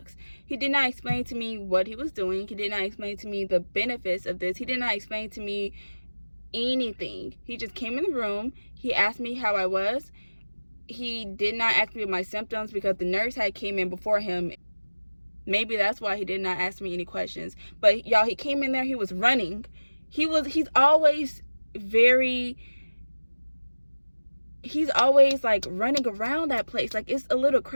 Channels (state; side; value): inverted; both; correlation -1.00